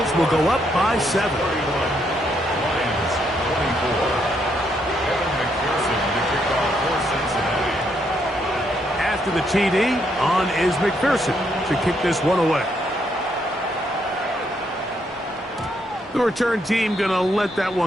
will go up by 7. Lions 24. Evan McPherson to kick off for Cincinnati. After the TD, on is McPherson to kick this one away. The return team going to let that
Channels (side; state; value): both; normal; correlation 0.75